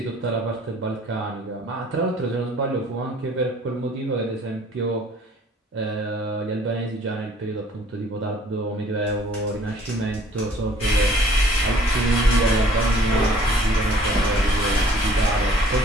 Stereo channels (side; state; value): both; normal; correlation 0.55